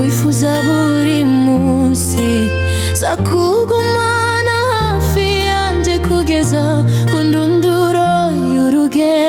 buri munsi. Zakugumana hafi yanjye kugeza ku ndunduro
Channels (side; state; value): both; identical; correlation 1.00